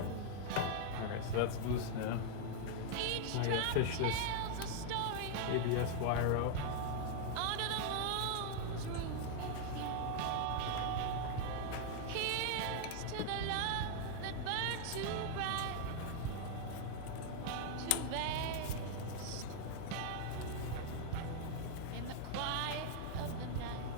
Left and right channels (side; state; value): both; different; correlation 0.00